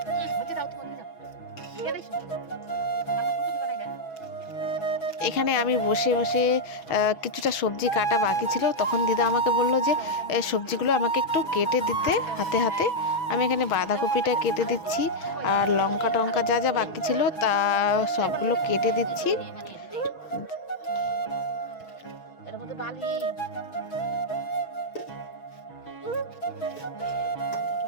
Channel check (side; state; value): right; late; 6.2 ms